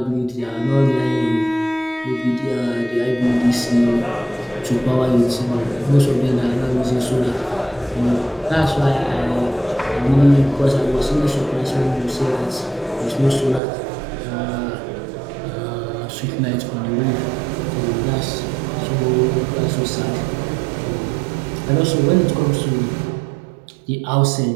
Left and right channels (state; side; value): drops out; left; at 13.6 s